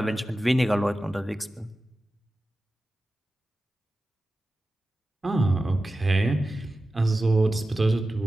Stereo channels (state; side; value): normal; both; correlation 0.94